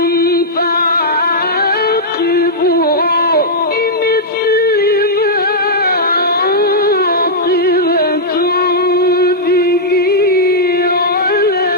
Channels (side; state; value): both; normal; correlation -0.09